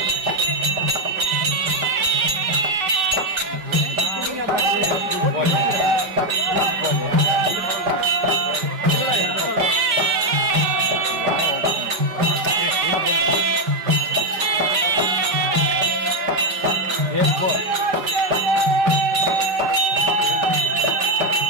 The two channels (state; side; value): late; left; 5.0 ms